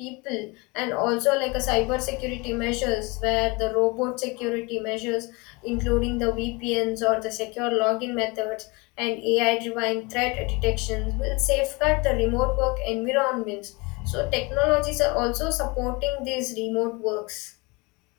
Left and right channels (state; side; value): quieter; right; 26.7 dB